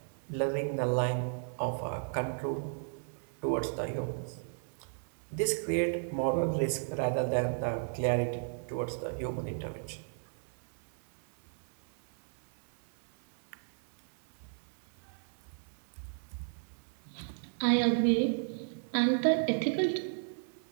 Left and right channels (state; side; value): silent; left; 55 dB below the other